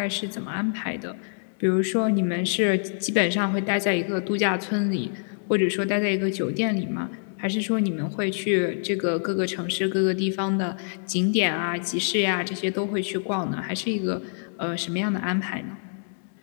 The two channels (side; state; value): right; silent; digital silence